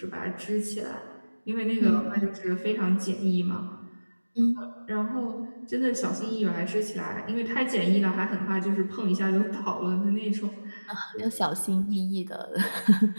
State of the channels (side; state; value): both; inverted; correlation -1.00